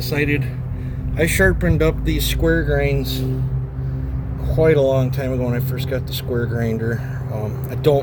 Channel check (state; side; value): identical; both; correlation 1.00